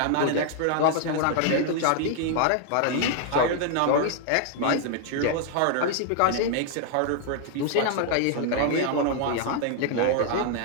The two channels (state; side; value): different; both; correlation 0.00